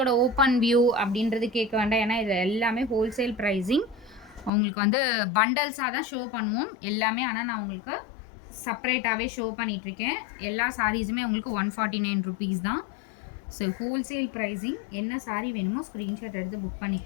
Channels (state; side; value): drops out; right; at 4.5 s